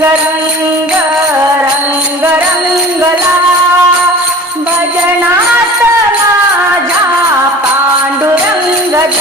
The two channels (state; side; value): normal; both; correlation 0.41